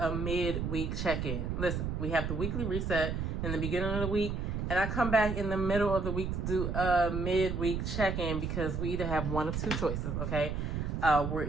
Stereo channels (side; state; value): right; noise; rumble, 2 dB below the sound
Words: midweek check-in. Listen, we have the weekly reset in the beginning of the week, and I come back in the middle of the week to do a midweek check-in because we either have one of two choices, okay? We're